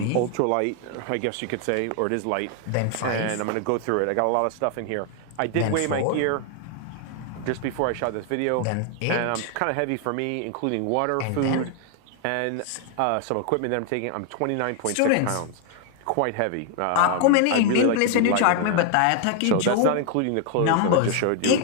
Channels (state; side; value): different; both; correlation 0.00